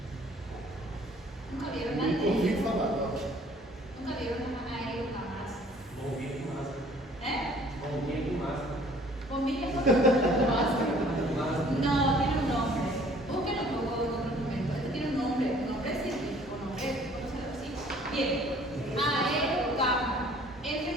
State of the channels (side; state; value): both; normal; correlation 0.55